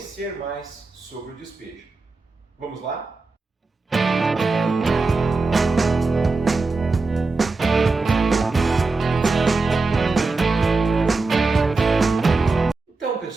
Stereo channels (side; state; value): left; quieter; 3.8 dB